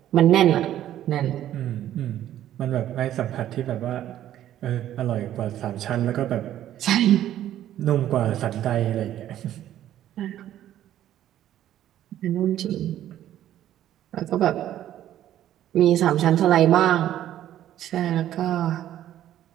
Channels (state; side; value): quieter; left; 12.1 dB